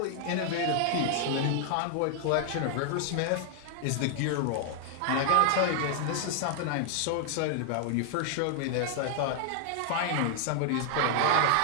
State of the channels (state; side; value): different; both; correlation 0.00